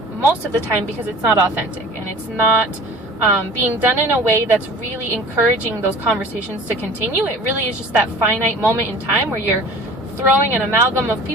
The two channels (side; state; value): both; normal; correlation 0.44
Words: most of the time because it's not authentic, and it's not being done in a way that's really encouraging those conversations to continue. It really is just that finite moment in time where you're throwing an amalgam of